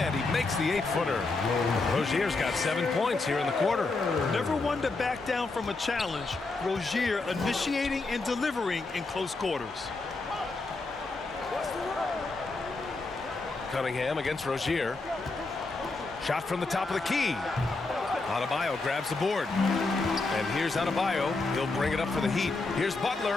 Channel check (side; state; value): right; quieter; 3.5 dB